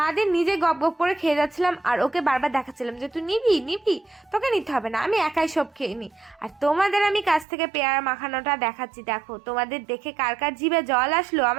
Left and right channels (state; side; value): drops out; left; at 7.5 s